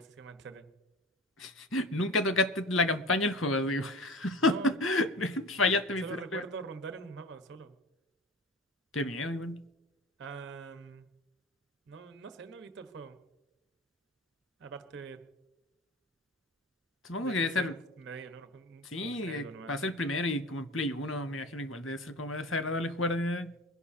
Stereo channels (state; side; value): normal; both; correlation 0.35